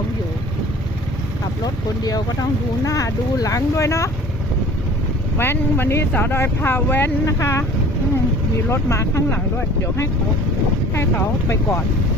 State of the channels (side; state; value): both; normal; correlation 0.47